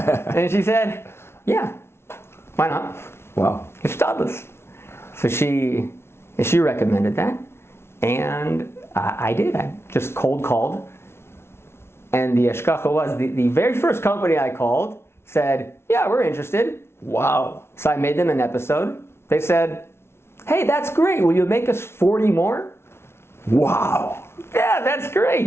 she said, yeah, why not? Wow. It's Stadlis. So she recommended that, and I did. I just cold called. And the Eshkacha was, the very first company I called said, yeah, we're interested. Wow. So I made them an episode. They said, hey, that's great. Will you make us 40 more? Wow. Yeah, that's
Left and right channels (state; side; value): late; right; 0.12 ms